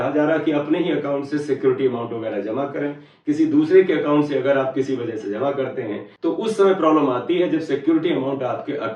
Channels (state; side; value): identical; both; correlation 1.00